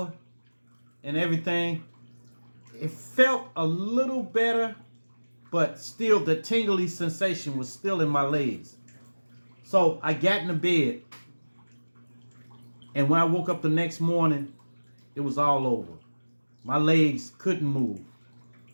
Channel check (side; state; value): both; inverted; correlation -1.00